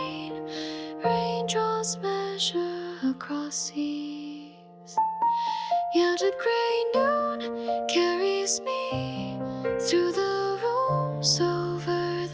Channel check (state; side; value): identical; both; correlation 1.00